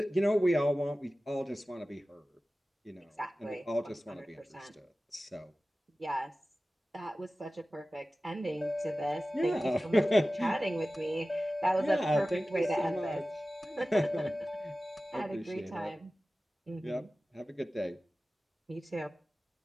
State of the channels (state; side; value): normal; both; correlation 0.96